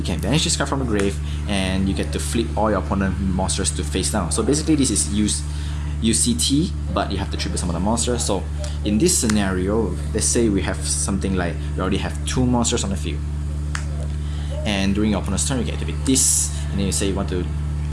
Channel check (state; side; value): identical; both; correlation 1.00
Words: can banish this card from the grave and you get to flip all your opponent monsters to face down. So basically this is used use CT, but you have to tribute some of the monsters. So in this scenario, let's say we have something like we already have 2 monsters on the field, and during your opponent's turn you can activate this, and then you say you want to